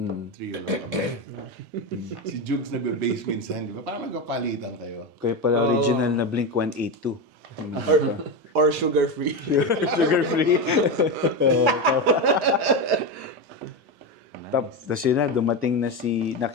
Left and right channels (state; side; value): normal; both; correlation 0.15